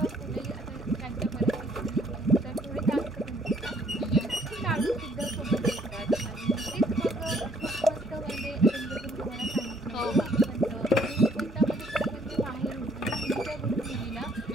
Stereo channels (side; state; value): both; normal; correlation 0.65